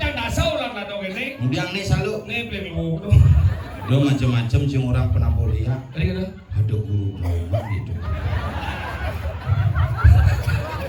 dan dasar lah lah dong ini. Kemudian nih selalu. Nih pelenggu. Dia macam-macam sih orang pernah boleh ya. Tadi kata. Ada guru drama gitu.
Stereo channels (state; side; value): identical; both; correlation 1.00